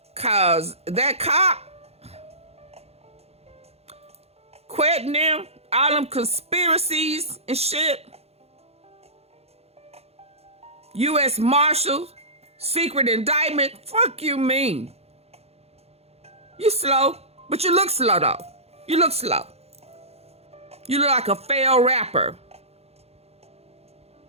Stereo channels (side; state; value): left; late; 0.30 ms